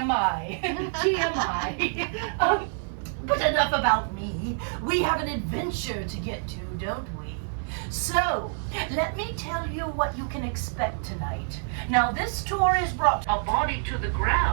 TMI. But enough about me. We have an adventure to get to, don't we? So, let me tell you what you can expect tonight. Now, this tour is brought a body to the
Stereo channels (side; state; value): left; silent; digital silence